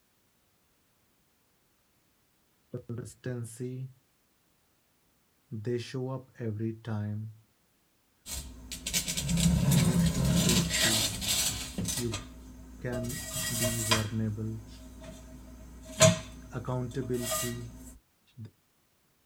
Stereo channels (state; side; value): identical; both; correlation 1.00